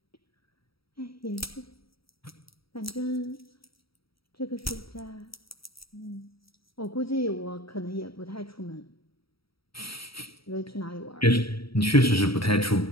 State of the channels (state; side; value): late; right; 0.75 ms